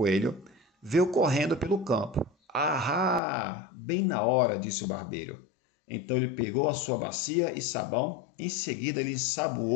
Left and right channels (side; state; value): right; drops out; at 3.2 s